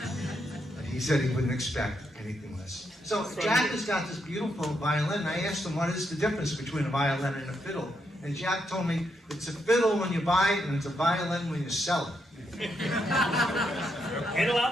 He said he wouldn't expect anything less. So Jack has got this beautiful violin, and I asked him what is the difference between a violin and a fiddle. And Jack told me it's a fiddle when you buy it, and it's a violin when you sell it. And a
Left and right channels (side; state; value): both; normal; correlation 0.80